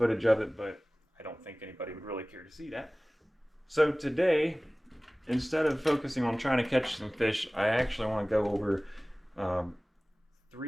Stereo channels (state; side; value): normal; both; correlation 0.98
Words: of it, but I don't think anybody would really care to see that. So today, instead of focusing on trying to catch some fish, I actually want to go over